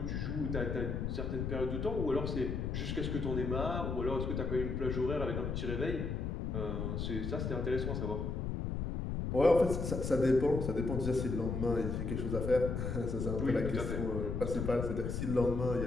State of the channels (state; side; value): noise; left; rumble, 2 dB below the sound